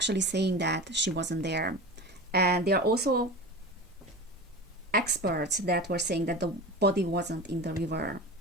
saying that she wasn't there. And there are also experts that were saying that the body wasn't in the river.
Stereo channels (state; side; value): normal; both; correlation 0.31